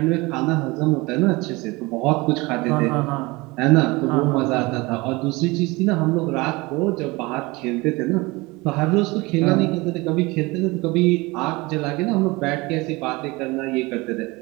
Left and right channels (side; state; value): left; quieter; 23.4 dB